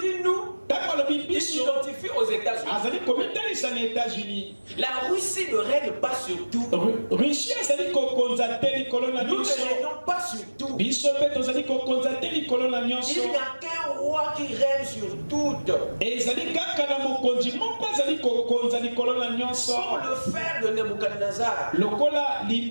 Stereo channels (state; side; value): inverted; both; correlation -1.00